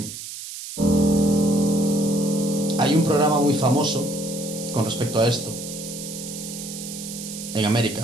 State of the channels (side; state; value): right; noise; hiss, 10 dB below the sound